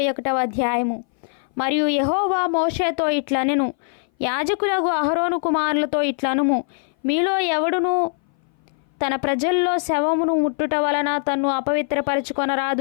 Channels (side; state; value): right; silent; 59 dB below the other